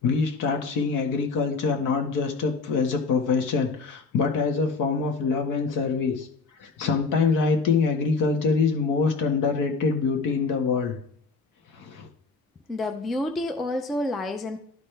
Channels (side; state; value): right; quieter; 4.3 dB